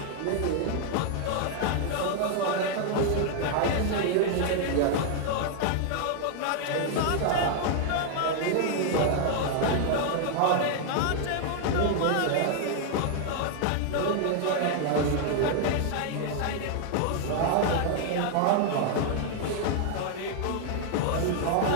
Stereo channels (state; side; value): different; both; correlation 0.00